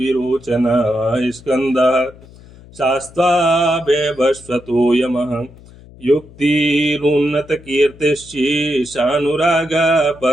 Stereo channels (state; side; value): noise; left; hum, 22 dB below the sound